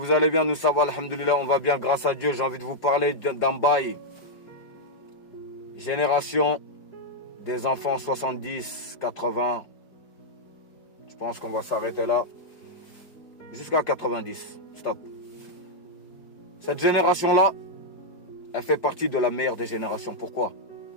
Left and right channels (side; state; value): right; late; 4.9 ms